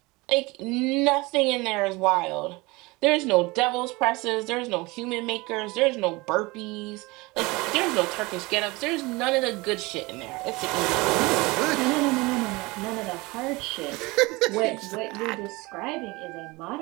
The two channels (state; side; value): quieter; left; 23.4 dB